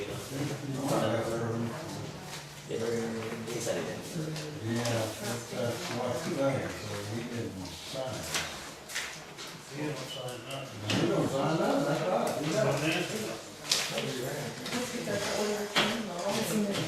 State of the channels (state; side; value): identical; both; correlation 1.00